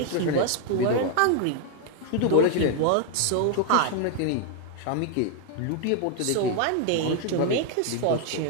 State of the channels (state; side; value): different; both; correlation 0.00